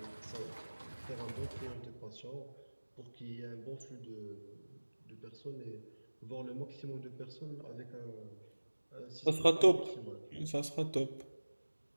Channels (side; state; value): both; inverted; correlation -1.00